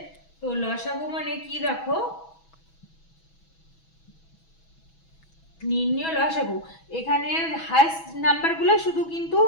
তো লসাগু মানে কি দেখো, নির্ণয় লসাগু, এখানে হাইস্ট নাম্বারগুলো শুধু কিন্তু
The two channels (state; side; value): late; right; 6.1 ms